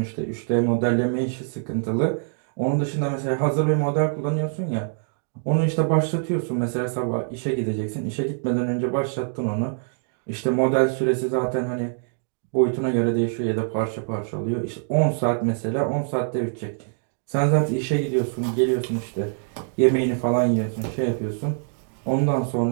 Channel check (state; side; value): silent; left; digital silence